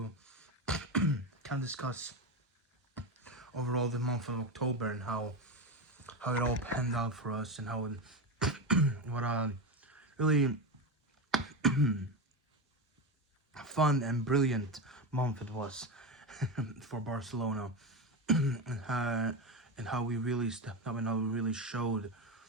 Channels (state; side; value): normal; both; correlation 0.16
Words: kind of discuss overall the month of October and how it all panned out for us and how what a really fun and brilliant month it was for Barcelona, and how we really stepped up and how we really showed